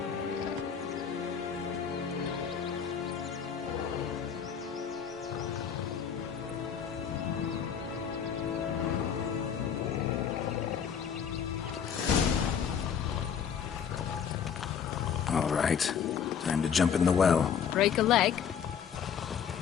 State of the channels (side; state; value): right; quieter; 7.6 dB